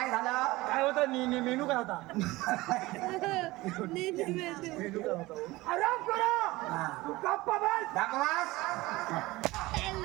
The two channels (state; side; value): quieter; left; 19.9 dB